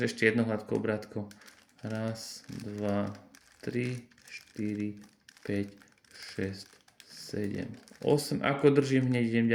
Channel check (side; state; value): both; identical; correlation 1.00